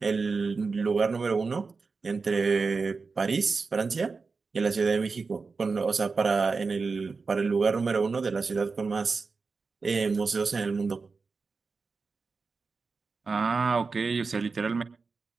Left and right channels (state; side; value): quieter; left; 4.5 dB